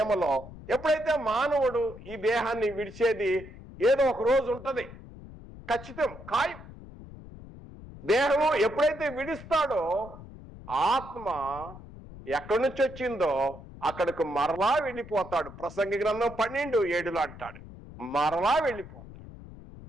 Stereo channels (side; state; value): left; noise; rumble, 16 dB below the sound